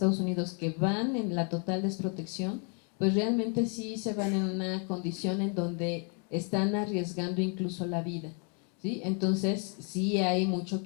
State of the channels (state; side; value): quieter; right; 38.8 dB